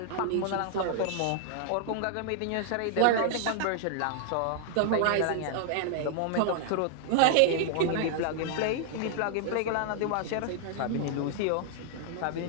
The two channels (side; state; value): both; different; correlation 0.00